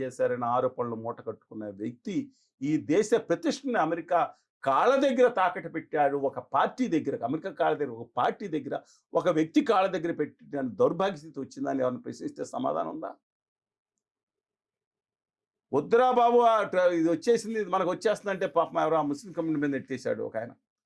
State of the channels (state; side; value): identical; both; correlation 1.00